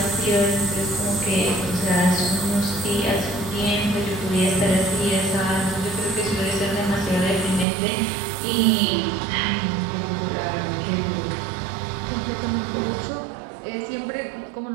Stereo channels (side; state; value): left; drops out; at 7.7 s